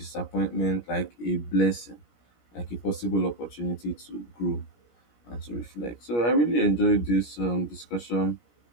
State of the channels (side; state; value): right; late; 17 ms